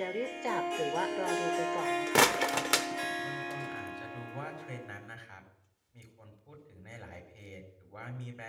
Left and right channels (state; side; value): identical; both; correlation 1.00